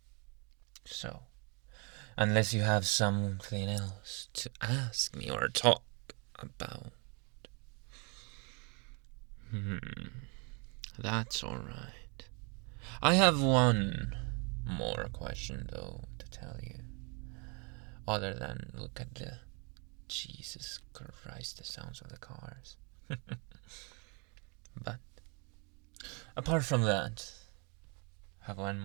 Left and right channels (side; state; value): left; quieter; 34.0 dB